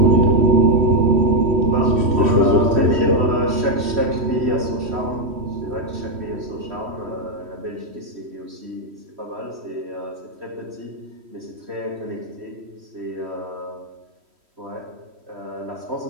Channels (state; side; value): late; left; 3.1 ms